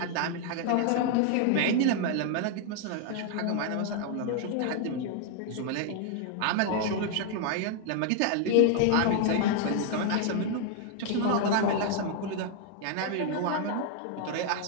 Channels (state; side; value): different; both; correlation 0.00